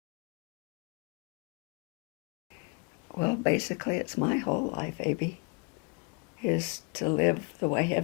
Well, basically it's my whole life, Abe, is to live the way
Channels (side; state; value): right; quieter; 32.1 dB